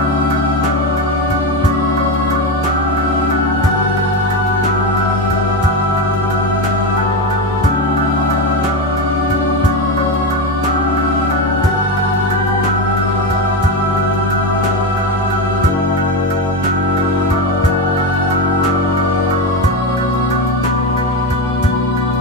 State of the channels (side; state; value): both; normal; correlation 0.15